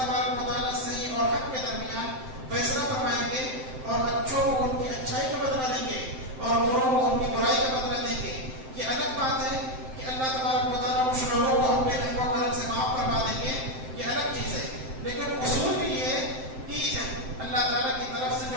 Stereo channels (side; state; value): left; late; 7.7 ms